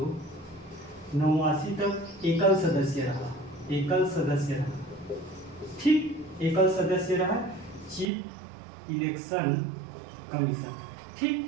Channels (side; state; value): left; drops out; at 8.1 s